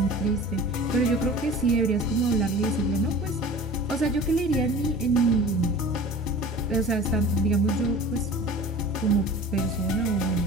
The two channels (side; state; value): both; normal; correlation 0.40